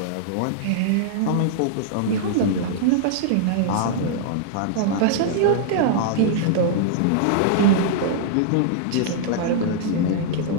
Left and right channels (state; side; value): different; both; correlation -0.01